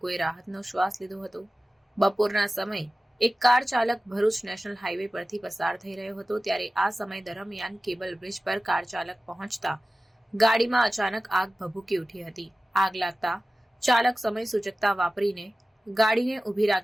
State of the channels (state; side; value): normal; both; correlation 0.96